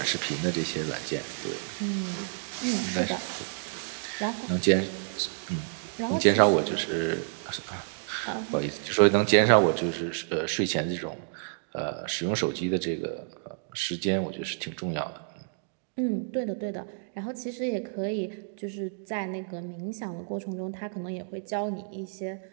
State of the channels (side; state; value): left; silent; digital silence